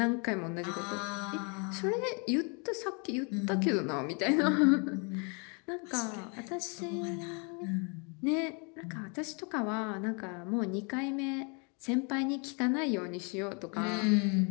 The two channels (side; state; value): right; quieter; 35.2 dB